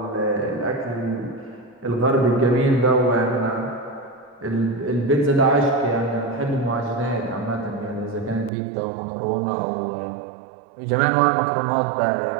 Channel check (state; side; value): drops out; left; at 8.5 s